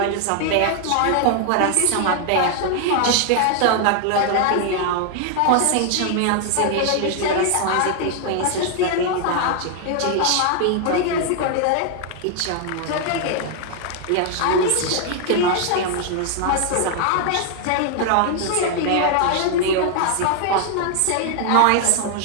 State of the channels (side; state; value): both; different; correlation 0.00